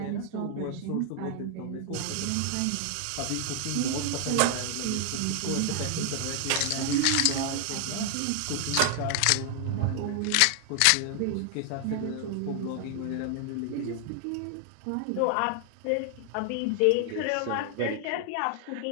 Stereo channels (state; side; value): different; both; correlation 0.00